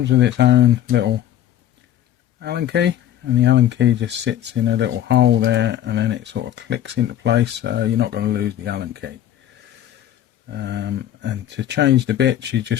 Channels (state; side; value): quieter; right; 11.6 dB